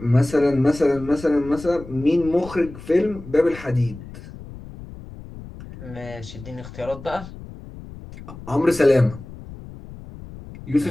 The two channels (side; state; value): left; noise; rumble, 15 dB below the sound